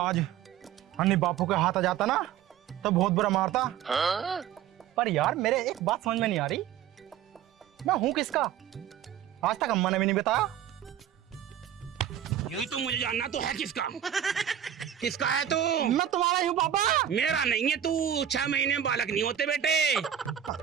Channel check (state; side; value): quieter; left; 10.1 dB